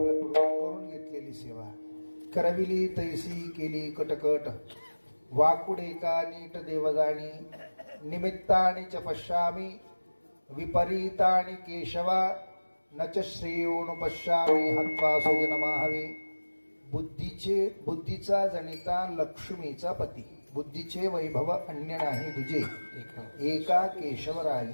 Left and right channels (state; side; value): inverted; both; correlation -1.00